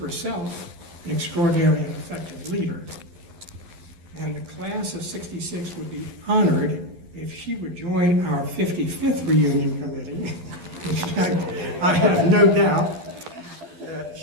an extraordinary and effective leader. And the class of '66 would be honored if she would join our 55th reunion committee, which I have no doubt that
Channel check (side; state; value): left; late; 12 ms